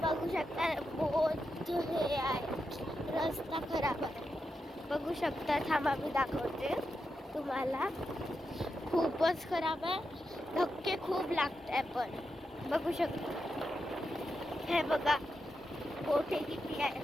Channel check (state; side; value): normal; both; correlation 0.87